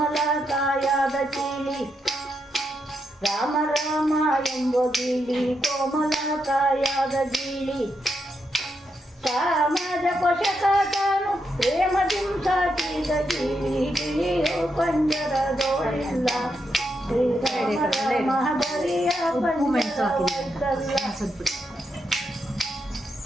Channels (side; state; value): both; normal; correlation 0.82